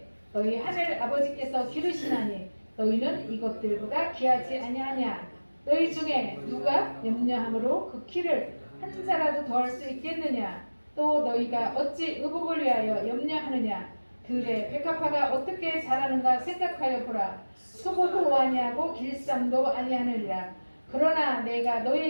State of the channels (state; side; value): inverted; both; correlation -1.00